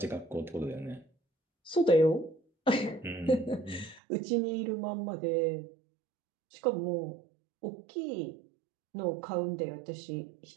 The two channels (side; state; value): left; drops out; at 4.0 s